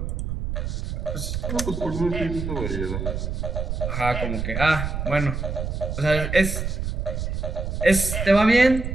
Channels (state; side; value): noise; right; rumble, 3 dB below the sound